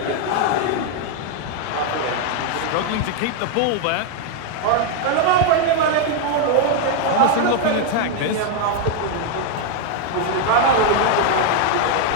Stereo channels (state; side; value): different; both; correlation 0.01